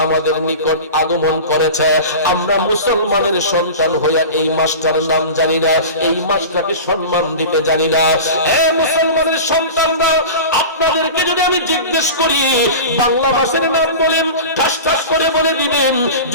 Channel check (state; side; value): inverted; both; correlation -0.32